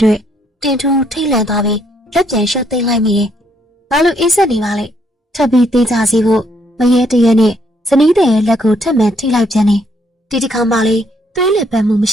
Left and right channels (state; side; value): normal; both; correlation 0.71